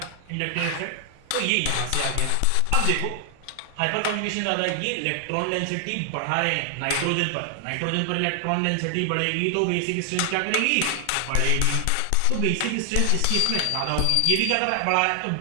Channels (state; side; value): different; both; correlation 0.00